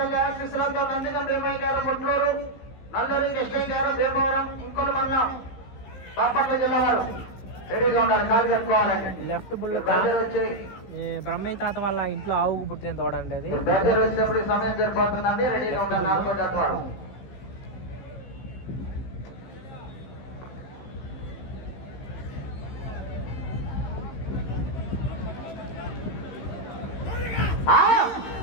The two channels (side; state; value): right; late; 15 ms